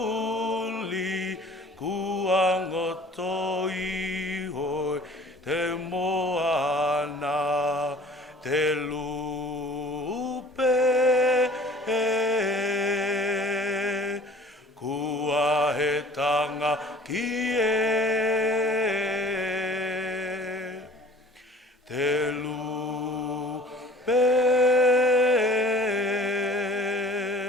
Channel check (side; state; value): both; normal; correlation 0.48